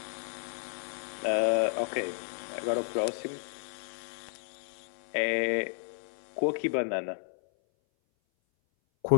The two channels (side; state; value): right; silent; 56 dB below the other